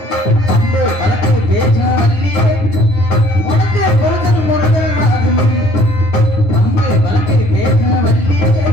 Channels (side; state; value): right; late; 10 ms